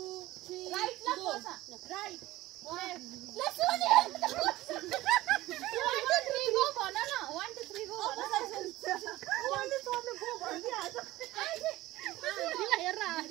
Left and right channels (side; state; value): left; quieter; 17.3 dB